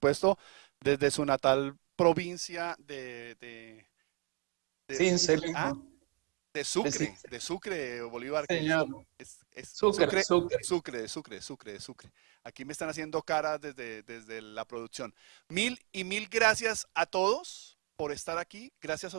desde su natal provincia de Sucre, Bolívar. Señor. Sucre. Aquí me están haciendo caras desde la producción. Mil gracias a todos por estar aquí, gracias a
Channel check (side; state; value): left; quieter; 31.3 dB